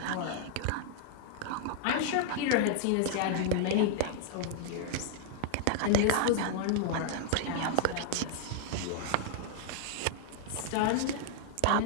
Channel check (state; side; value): different; both; correlation 0.00